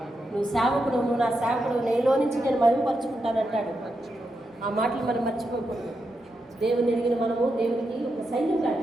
నువ్వు సేవకుడు, నువ్వు నా సేవకుడు, నేలో నుంచి నేను మరుగుపరుచుకుంటానంటాడు. ఆ మాటలు మనం మర్చిపోకూడదు. దేవుని ఎరిగిన మనము దేవునికి ఒక సైన్యం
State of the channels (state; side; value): normal; both; correlation 0.86